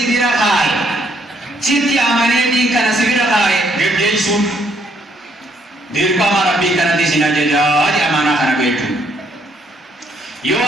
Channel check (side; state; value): both; normal; correlation 0.70